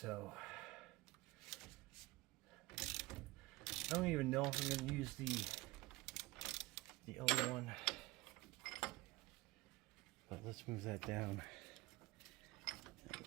I don't even know if I'm going to use the other one, but let's move that down.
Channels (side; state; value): left; quieter; 19.8 dB